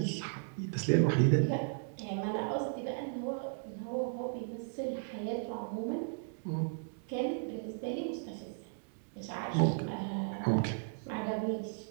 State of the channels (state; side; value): silent; left; digital silence